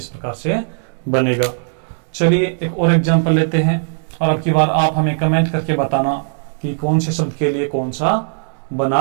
प्रकार से बनेगा। चलिए एक और एग्जांपल लेते हैं और अब की बार आप हमें कमेंट करके बताना कि कौन से शब्द के लिए कौन सा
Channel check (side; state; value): left; silent; digital silence